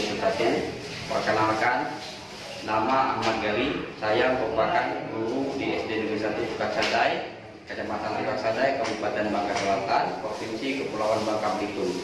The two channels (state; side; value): identical; both; correlation 1.00